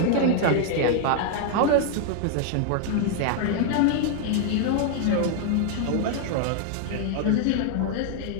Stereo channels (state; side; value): different; both; correlation 0.00